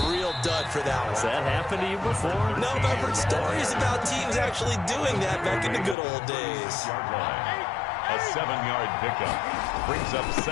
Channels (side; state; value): right; drops out; at 6.0 s